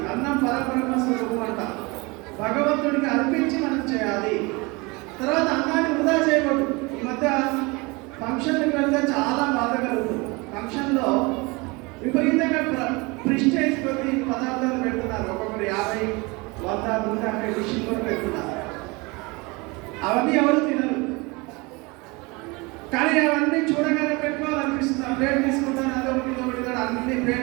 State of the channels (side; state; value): left; quieter; 26.1 dB